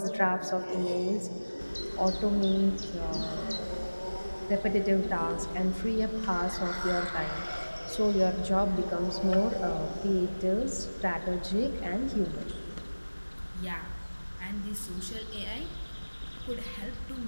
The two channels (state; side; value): inverted; both; correlation -1.00